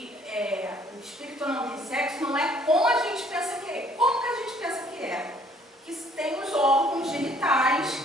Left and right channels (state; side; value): normal; both; correlation 0.61